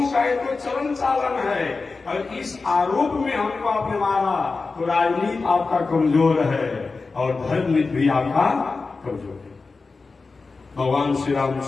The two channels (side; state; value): right; quieter; 4.1 dB